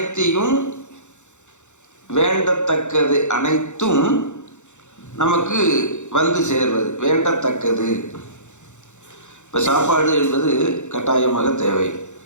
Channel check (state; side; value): late; right; 0.84 ms